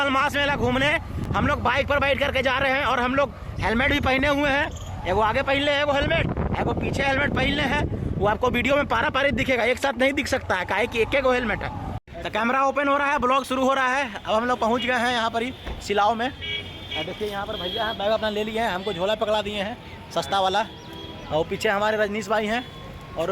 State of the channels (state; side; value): identical; both; correlation 1.00